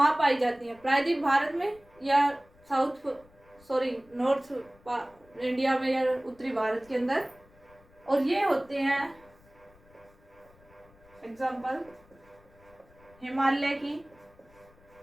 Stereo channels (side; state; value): left; noise; rumble, 28 dB below the sound